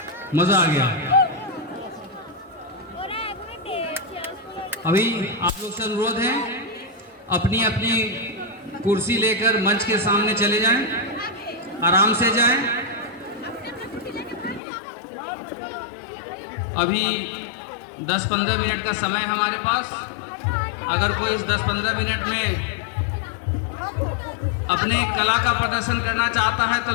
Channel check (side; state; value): right; drops out; at 14.6 s